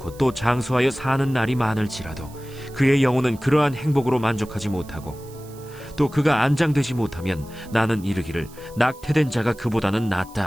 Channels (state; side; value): noise; right; hiss, 23 dB below the sound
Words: 또 장수하여 사는 날이 많을지라도 그의 영혼은 그러한 행복으로 만족하지 못하고 또 그가 안장되지 못하면 나는 이르기를 낙태된 자가 그보다는 낫다